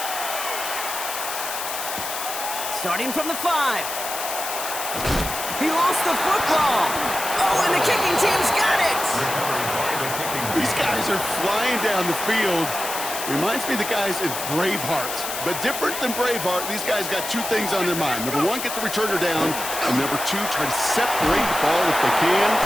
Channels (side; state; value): left; noise; hiss, 5 dB below the sound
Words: Starting from the 5. He lost the football. Oh, and the kicking team's got it. These guys are flying down the field. Reminds me of the guys in Braveheart. But different than Braveheart, these guys got 2 things on their mind. Number 1, get the returner down. And number 2, try to separate the ball if they can.